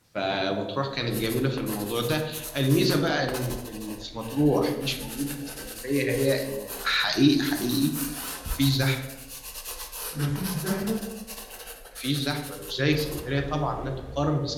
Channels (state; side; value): identical; both; correlation 1.00